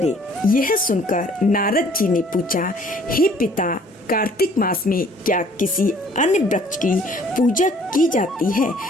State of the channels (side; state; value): both; normal; correlation 0.57